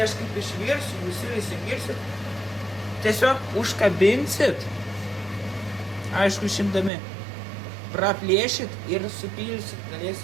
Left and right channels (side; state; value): left; drops out; at 6.9 s